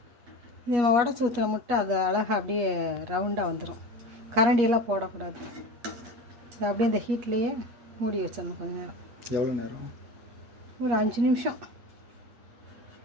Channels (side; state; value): left; late; 8.4 ms